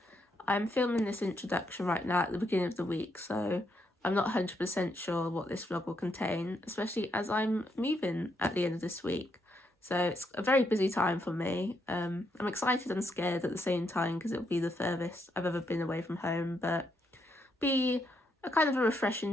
I'm filming this introduction right now at the beginning of the week, so I'm not 100% sure what this vlog will contain, especially as I'm moving at the end of this week. So it's a very busy time for me. I'm excited and scared at the same time because it'll be the furthest I've ever been away from home, but be a kind of a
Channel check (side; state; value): both; normal; correlation 0.78